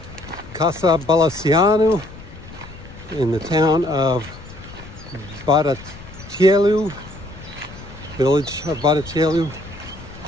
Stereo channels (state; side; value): noise; left; rumble, 17 dB below the sound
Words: Bradetelu in the town of Bradetelu, village of Bradetelu.